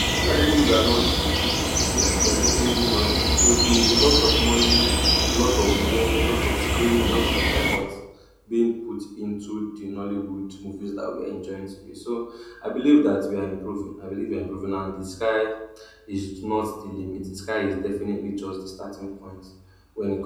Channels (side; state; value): both; identical; correlation 1.00